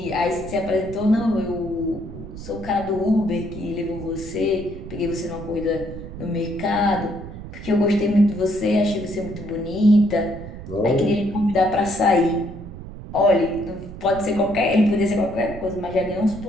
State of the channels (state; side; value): noise; right; rumble, 12 dB below the sound